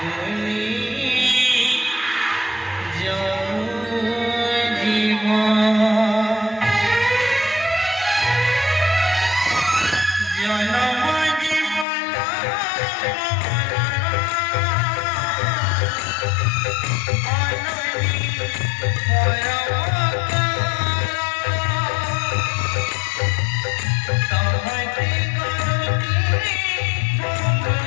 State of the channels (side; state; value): right; drops out; at 11.9 s